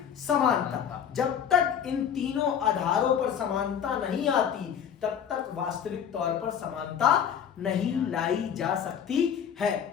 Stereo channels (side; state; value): right; quieter; 8.3 dB